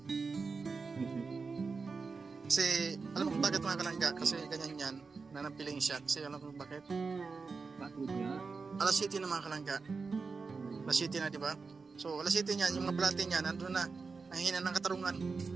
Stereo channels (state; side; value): quieter; left; 4.6 dB